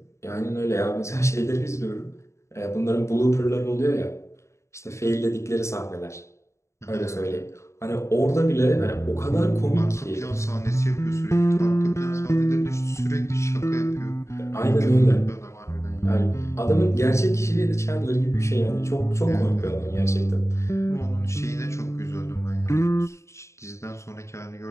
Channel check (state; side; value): late; right; 0.14 ms